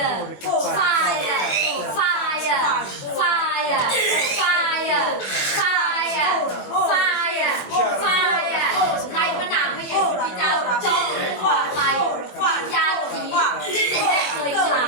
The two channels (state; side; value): late; right; 20 ms